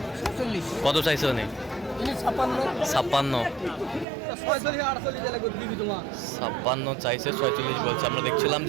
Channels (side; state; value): left; drops out; at 4.0 s